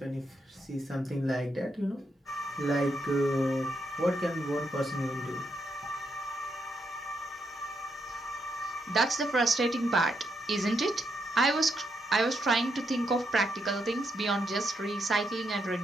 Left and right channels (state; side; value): normal; both; correlation 0.80